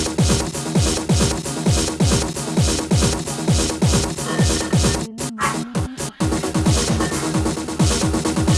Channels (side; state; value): both; identical; correlation 1.00